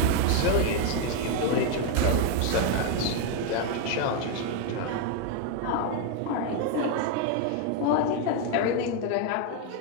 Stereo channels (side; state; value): both; different; correlation 0.01